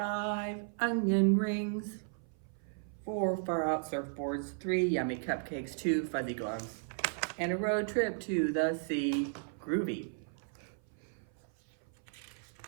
onion rings, 4 far out surfboards, 3 yummy cupcakes, 2 fuzzy gloves, and a road trip to the sea. Groovy.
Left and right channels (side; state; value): left; silent; 54 dB below the other